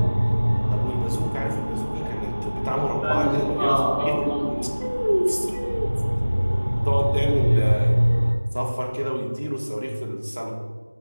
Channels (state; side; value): inverted; both; correlation -1.00